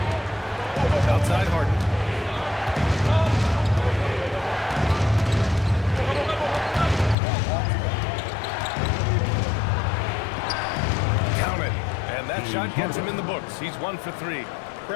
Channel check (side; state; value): right; drops out; at 7.2 s